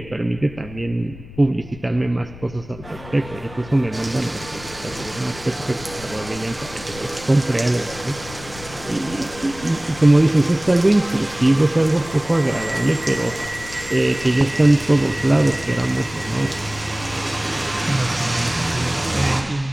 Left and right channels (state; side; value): noise; left; rumble, 17 dB below the sound